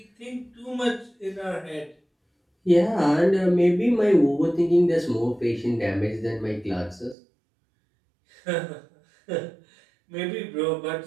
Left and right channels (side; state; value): left; drops out; at 7.2 s